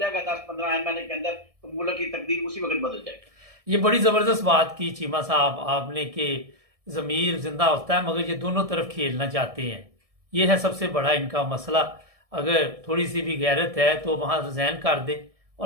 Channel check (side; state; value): left; late; 1.7 ms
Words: 10-15 MNA के अंदर, तो मुल्क की तकदीर उसी वक्त बदल जाएगी। ये बड़ी ज़बरदस्त बात की चीमा साहब आपने कि ज़मीर जिंदा होता है, मगर ये दोनों तरफ खेलना चाहते हैं। ये है सबसे बड़ा इनका मसला। अगर थोड़ी सी भी गैरत है तो वहाँ रिज़ाइन कर दे